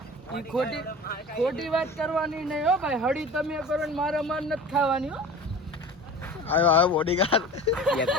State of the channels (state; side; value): normal; both; correlation 0.37